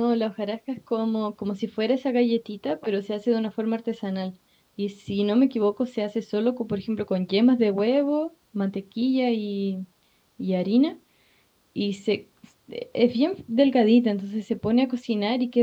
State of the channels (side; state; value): both; identical; correlation 1.00